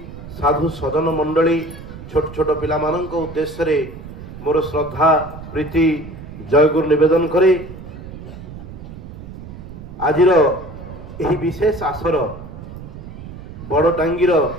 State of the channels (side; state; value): right; noise; rumble, 13 dB below the sound